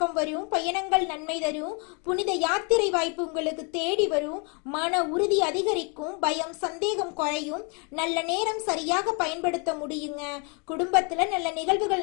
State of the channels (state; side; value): quieter; right; 34.9 dB